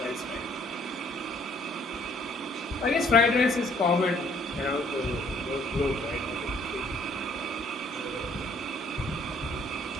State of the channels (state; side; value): normal; both; correlation 0.62